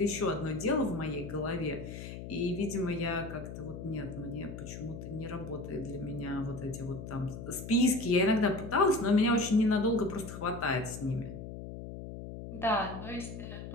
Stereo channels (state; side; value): noise; left; hum, 9 dB below the sound